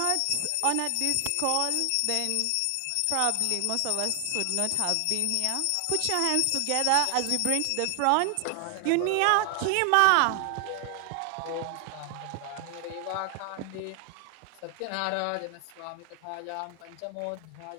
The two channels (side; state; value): both; different; correlation 0.00